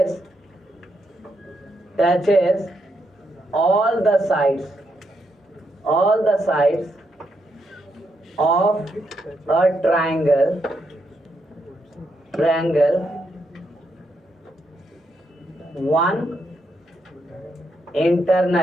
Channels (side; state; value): both; normal; correlation 0.80